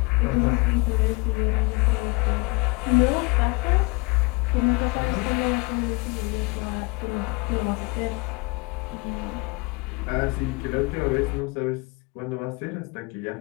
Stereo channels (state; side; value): quieter; right; 27.5 dB